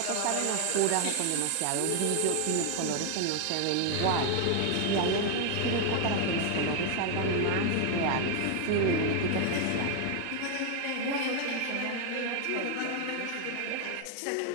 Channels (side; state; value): both; different; correlation 0.01